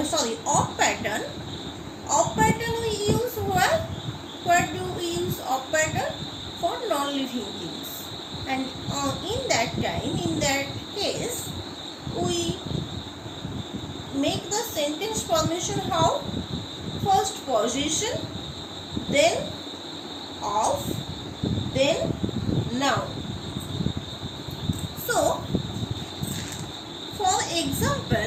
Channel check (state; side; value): identical; both; correlation 1.00